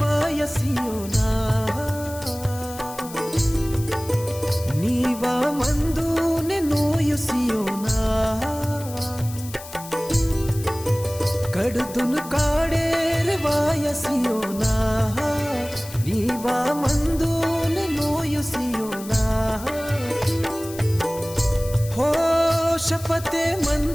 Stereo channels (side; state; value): left; noise; hiss, 15 dB below the sound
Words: नीवा मंदूने नोयुसियोना कडदुन काडेर वायसियोना नीवा मंदूने नोयुसियोना हो शपथे